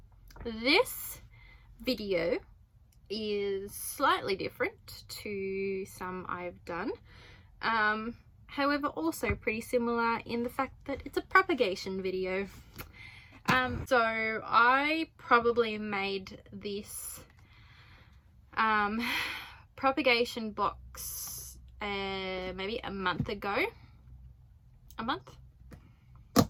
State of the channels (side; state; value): both; identical; correlation 1.00